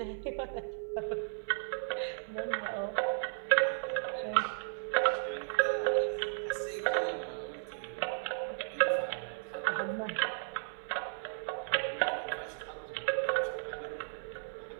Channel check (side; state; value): left; silent; 55 dB below the other